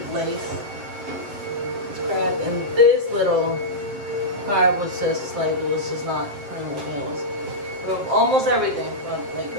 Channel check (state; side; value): late; left; 7.6 ms